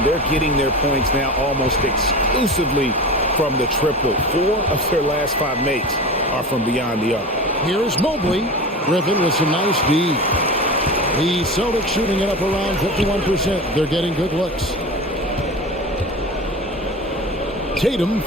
they're getting their points now almost exclusively from the triple. 4 of their last 5 makes are from beyond the arc. Here's Mobley. Griffin with some nice D. The Celtics shooting it up around 51%. They're getting good looks. Tatum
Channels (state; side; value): normal; both; correlation 0.30